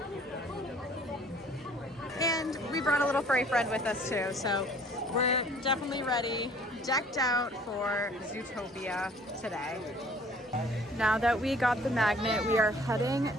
And we brought a little furry friend with us too, so we're definitely ready, decked out for Zootopia today. Now that we got the magnet, we are heading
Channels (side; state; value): both; normal; correlation 0.54